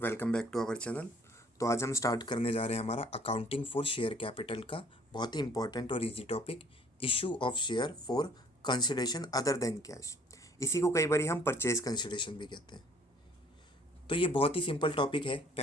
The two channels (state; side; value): normal; both; correlation 0.58